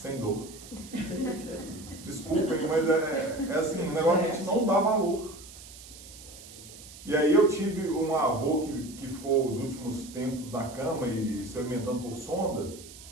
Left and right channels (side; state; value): right; noise; hiss, 17 dB below the sound